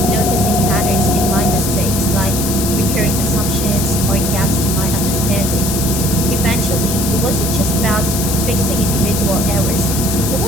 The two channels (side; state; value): left; noise; hiss, 3 dB below the sound